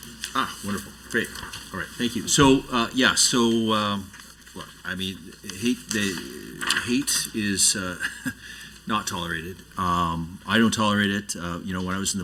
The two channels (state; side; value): identical; both; correlation 1.00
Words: wonderful. Great. All right. Thank you. So, look, I mean, hate is not tolerated. I don't tolerate it. When I was in the